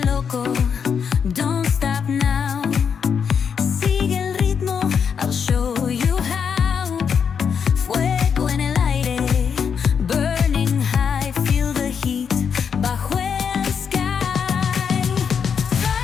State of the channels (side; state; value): right; quieter; 6.9 dB